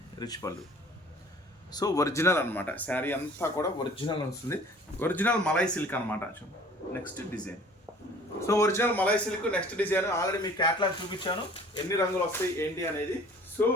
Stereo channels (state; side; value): normal; both; correlation 0.50